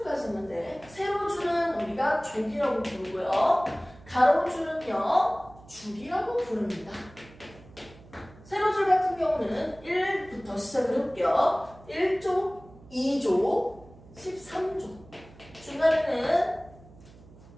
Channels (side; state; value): right; noise; hum, 22 dB below the sound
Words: 세로줄은 우리가 조기라고 부르고요. 가로줄은요. 주기라고 부릅니다. 세로줄 같은 경우는 1부터 시작을 해볼게요. 1조, 2조, 13조. 중간에는